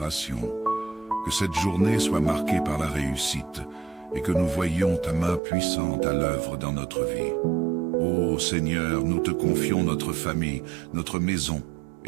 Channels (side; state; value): left; drops out; at 5.4 s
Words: Que cette journée soit marquée par la réussite et que nous voyions ta main puissante à l'œuvre dans notre vie. Ô Seigneur, nous te confions notre famille, notre maison